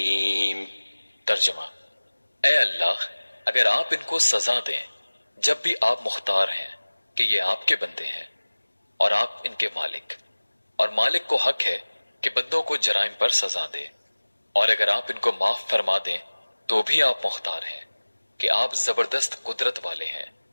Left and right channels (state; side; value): inverted; both; correlation -1.00